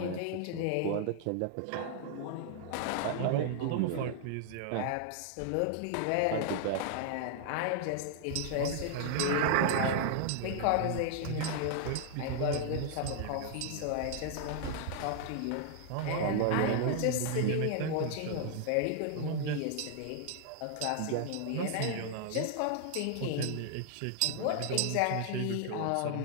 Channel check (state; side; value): different; both; correlation -0.01